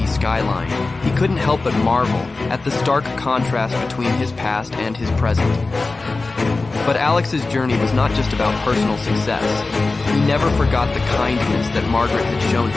skyline, he couldn't help but marvel at the stark contrast between his past and his present. But Alex's journey was not just about personal success. He never forgot the kindness that Margaret had shown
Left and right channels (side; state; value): right; quieter; 3.6 dB